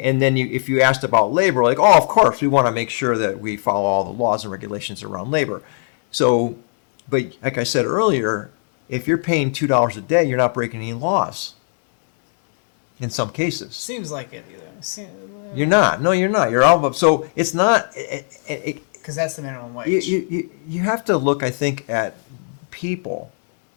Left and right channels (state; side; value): silent; right; digital silence